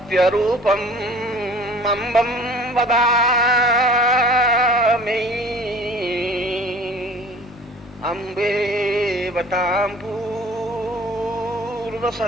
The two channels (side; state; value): both; normal; correlation 0.47